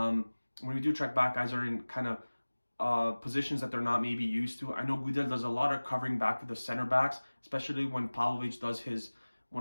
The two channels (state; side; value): inverted; both; correlation -1.00